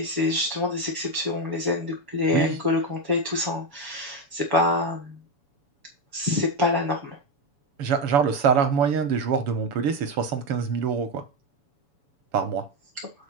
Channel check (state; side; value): late; left; 7.0 ms